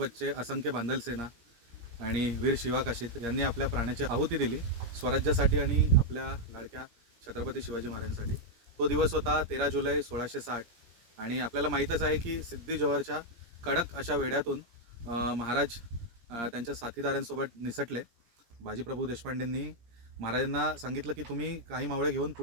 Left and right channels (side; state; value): left; late; 17 ms